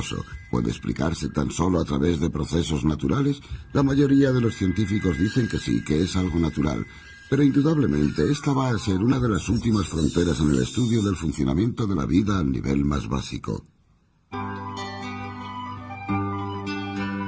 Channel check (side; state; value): both; identical; correlation 1.00